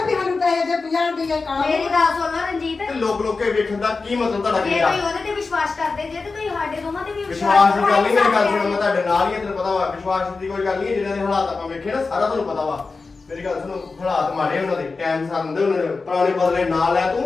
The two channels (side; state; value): right; quieter; 4.1 dB